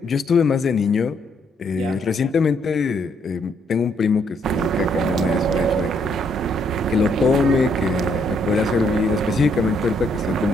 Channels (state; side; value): normal; both; correlation 0.71